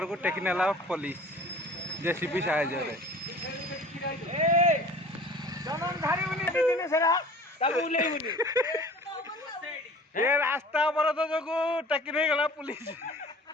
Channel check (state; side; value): normal; both; correlation 0.45